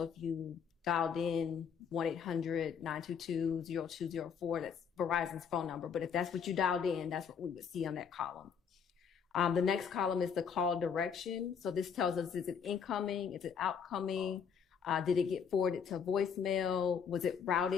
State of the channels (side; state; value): right; quieter; 7.0 dB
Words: if you dialed in 1-800-922-0204, that's Verizon's phone number. But if that's what you dialed in, that's what we would see on that column. The next column is the call direction. So this tells us, is it incoming? Is it outcoming? Did it get forwarded to voicemail? Was it